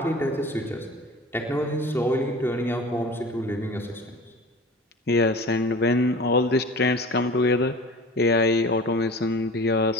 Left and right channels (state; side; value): normal; both; correlation 0.38